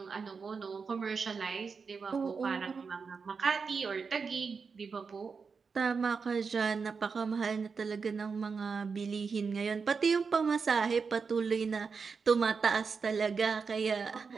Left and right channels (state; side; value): quieter; left; 5.3 dB